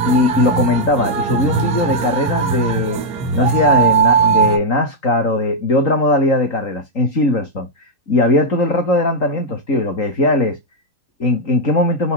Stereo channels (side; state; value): right; late; 3.8 ms